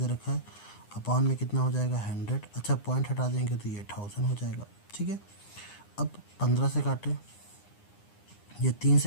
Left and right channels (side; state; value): right; late; 9.8 ms